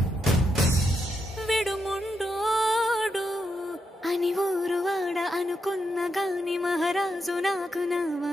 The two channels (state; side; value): normal; both; correlation 0.82